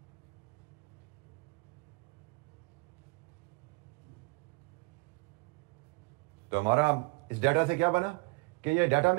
तो हमारा इस डाटा से क्या बना कि ये डाटा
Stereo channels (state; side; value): quieter; left; 28.2 dB